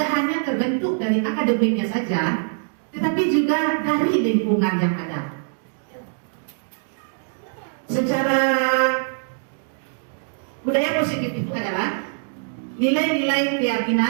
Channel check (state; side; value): silent; left; digital silence